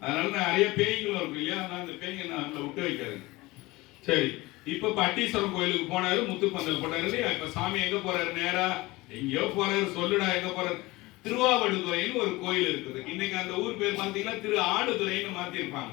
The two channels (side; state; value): right; quieter; 21.1 dB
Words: அதனால நிறைய பேய்களும் இருக்கு இல்லையா? அதனால அந்த பேய்ங்க நம்மள விட்டு வைக்காது. சரி, இப்ப பட்டீஸ்வரம் கோயிலுக்கு போனாரு, முத்துப்பந்தல் போட்டாரு இல்லையா? இப்ப சாமி எங்க போறாரு? நேரா எங்கயோ போறாரு. சொல்லுடா எங்க போறாரு? திருவாவடுதுறைன்னு ஒரு கோயில் இருக்குது. இன்னைக்கு அந்த ஊர் பேர் பாத்தீங்கன்னா திரு ஆடுதுறைன்னு மாத்திருப்பாங்க.